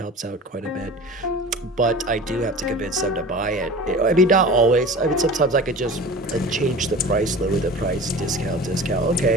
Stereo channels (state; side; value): normal; both; correlation 0.38